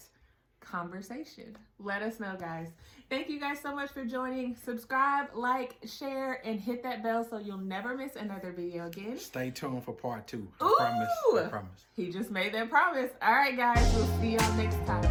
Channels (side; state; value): both; identical; correlation 1.00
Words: conversation? Let us know, guys. Thank you guys so much for joining. Subscribe, like, share, and hit that bell so you'll never miss another video again. Stay tuned for part 2. Ooh! I promise. He just made that promise. All right, guys, we'll see y'all next